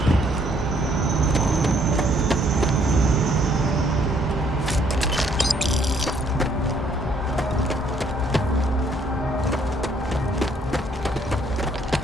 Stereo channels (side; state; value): both; normal; correlation 0.66